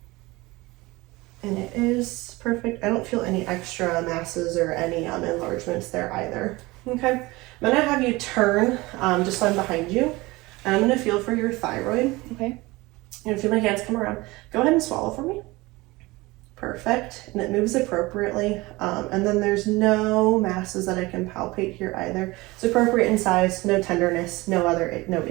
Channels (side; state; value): left; quieter; 21.6 dB